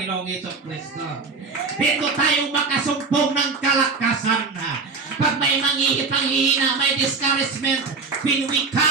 Jesucristo. Dito tayo makasumpong ng kalakasan. Pag may panghihina, may discouragement, when we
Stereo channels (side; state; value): left; quieter; 4.5 dB